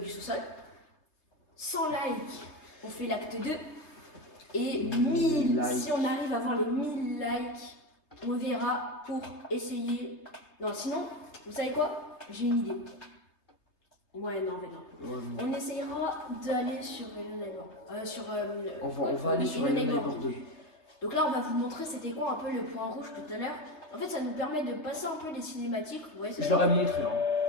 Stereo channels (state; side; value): late; right; 3.2 ms